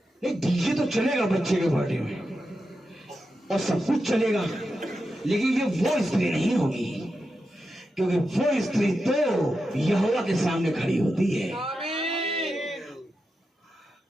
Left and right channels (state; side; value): normal; both; correlation 0.89